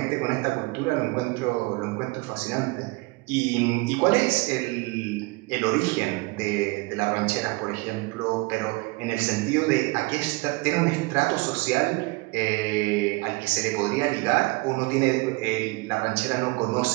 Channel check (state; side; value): quieter; left; 24.9 dB